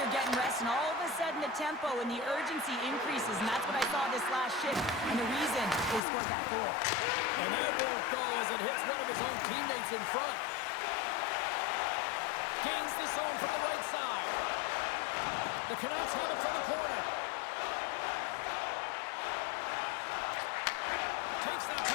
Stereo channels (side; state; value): right; drops out; at 6.0 s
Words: getting rest, and all of a sudden the tempo and the urgency increases, and that's what I saw this last shift, and the reason they scored that goal. And that won't go as it hits one of his own teammates in front. Gains the zone from the right side. The Canucks have it from the corner. Takes that